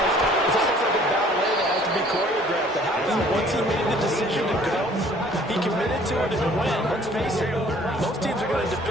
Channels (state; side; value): normal; both; correlation 0.55